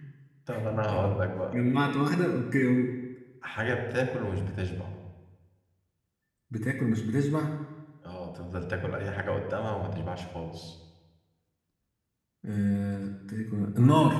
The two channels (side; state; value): both; identical; correlation 1.00